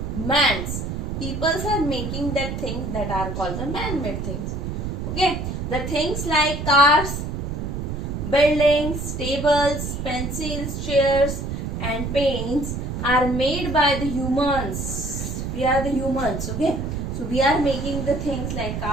man's, peoples are making that things that are called the man-made things. Okay, the things like cars, buildings, tables, pencils, chairs and paints are made by the humans. We are the humans. Okay, so we are making the things like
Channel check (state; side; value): noise; right; rumble, 4 dB below the sound